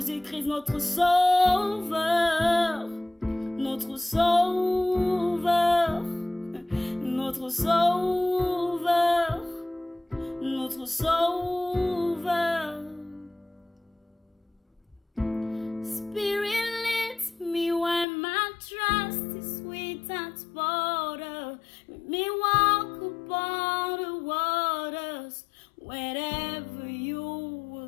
notre sauveur, notre sauveur, notre sauveur, notre sauveur. Spirit leads me when my trust is without border. Let me walk upon the waters wherever you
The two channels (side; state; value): right; drops out; at 18.1 s